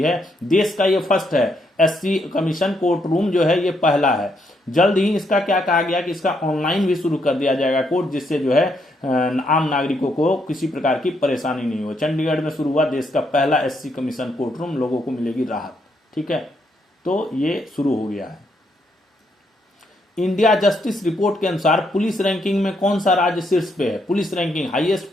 है। देश का ये फर्स्ट है, एससी कमीशन कोर्ट रूम जो है ये पहला है। जल्द ही इसका क्या कहा गया कि इसका ऑनलाइन भी शुरू कर दिया जाएगा कोर्ट, जिससे जो है आम नागरिकों को किसी प्रकार की परेशानी नहीं हो। चंडीगढ़ में शुरू हुआ देश का पहला एससी कमीशन कोर्ट रूम, लोगों को मिलेगी राहत, ठीक है। तो ये शुरू हो गया है। इंडिया जस्टिस रिपोर्ट के अनुसार पुलिस रैंकिंग में कौन सा राज्य शीर्ष पे है? Police ranking, highest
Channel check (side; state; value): both; normal; correlation 0.76